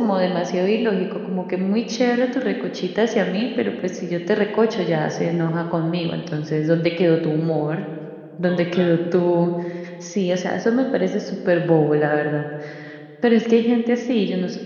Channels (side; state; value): both; identical; correlation 1.00